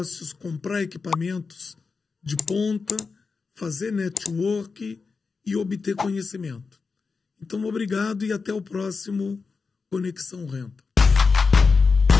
comprar equipamentos de ponta, fazer network e obter conhecimento. Então, obrigado e até o próximo Conexão Renta.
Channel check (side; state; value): right; quieter; 4.7 dB